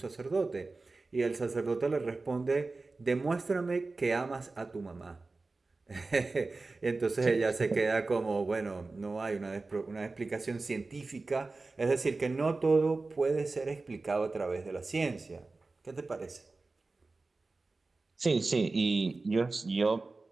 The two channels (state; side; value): quieter; left; 3.6 dB